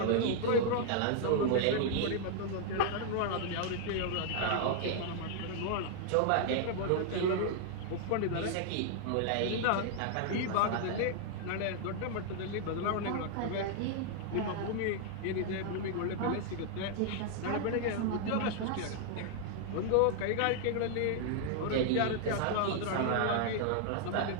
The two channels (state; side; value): different; both; correlation 0.00